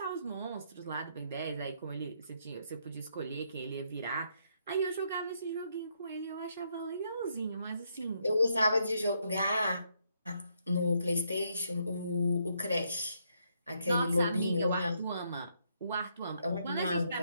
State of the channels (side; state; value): both; inverted; correlation -0.75